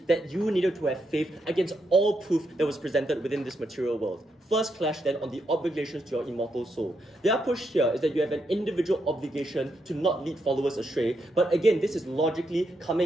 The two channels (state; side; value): normal; both; correlation 0.81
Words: that you needed to have faith against all proof that was presented within this material world. first clash then on the obligations to your immortal soul. Their push here is that you have an individual obligation to not lead followers astray, but again, this is logically